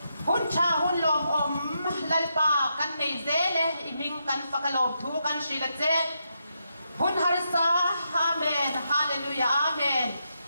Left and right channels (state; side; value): inverted; both; correlation -0.82